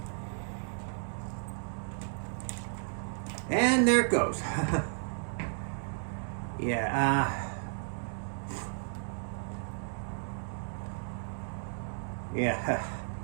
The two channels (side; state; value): left; silent; digital silence